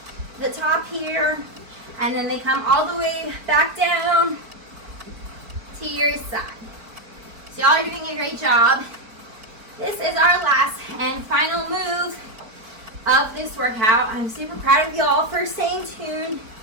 the top here, and then they come all the way back down to your side. So y'all are doing a great job. This is our last and final move of this workout. I'm super proud of y'all for staying tuned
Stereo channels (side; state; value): left; late; 4.5 ms